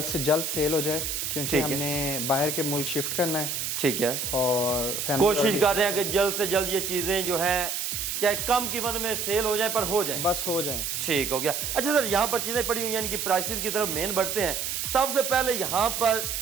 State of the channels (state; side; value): noise; right; hiss, 2 dB below the sound